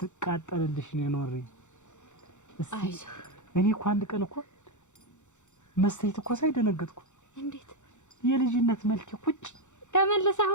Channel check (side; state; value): right; late; 0.84 ms